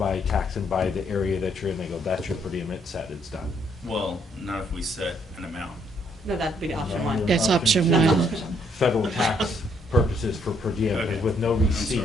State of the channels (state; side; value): normal; both; correlation 0.70